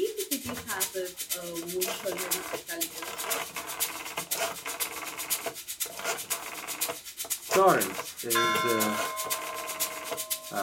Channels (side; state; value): both; identical; correlation 1.00